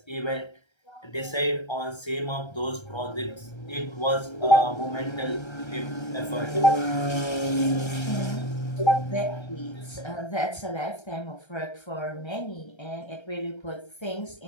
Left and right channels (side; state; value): right; late; 1.3 ms